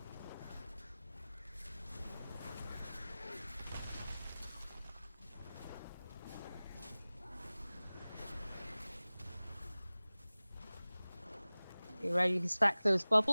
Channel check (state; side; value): inverted; both; correlation -0.98